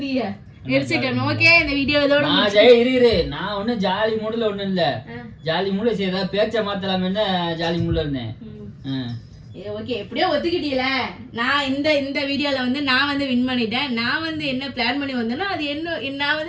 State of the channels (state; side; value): identical; both; correlation 1.00